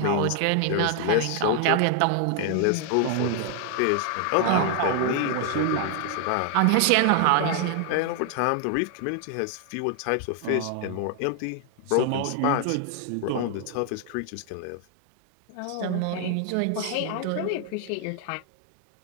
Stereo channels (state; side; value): different; both; correlation 0.00